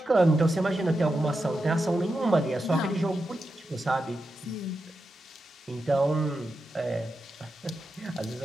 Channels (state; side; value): normal; both; correlation 0.89